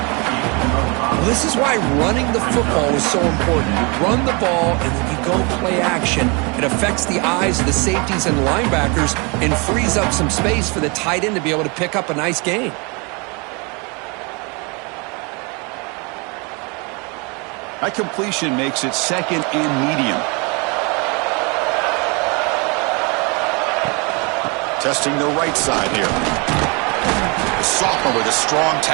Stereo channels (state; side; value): quieter; left; 30.6 dB